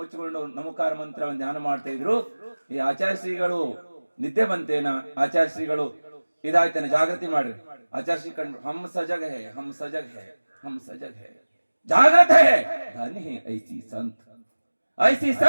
ನಮೋಕಾರ ಮಂತ್ರವನ್ನು ಧ್ಯಾನ ಮಾಡ್ತಾ ಇದ್ರು. ಈ ಆಚಾರ್ಯ ಶ್ರೀಗಳು ನಿದ್ದೆ ಬಂತೇನ? ಆಚಾರ್ಯ ಶ್ರೀಗಳು ಇದಾಯ್ತೇನೆ, ಜಾಗೃತಿ ಮಾಡ್ರಿ. ಆಚಾರ್ಯ ಶ್ರೀ ಕಂಡು ಹಮ್ ಸಜಗ್ ಹೇ, ಹಮ್ ಸಜಗ್ ಹೇ, ಹಮ್ ಸಜಗ್ ಹೇ, ಜಾಗೃತ ಹೇ, धन्य है ऐसी संत, ऐसी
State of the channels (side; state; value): both; inverted; correlation -1.00